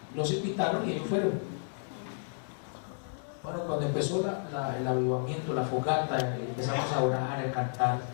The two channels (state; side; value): silent; right; digital silence